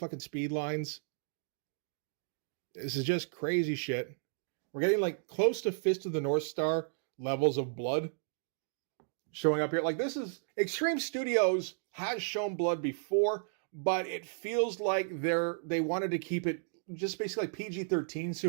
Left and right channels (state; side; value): silent; left; digital silence